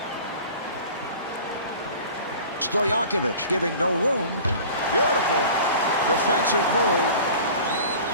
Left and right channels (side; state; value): both; inverted; correlation -0.41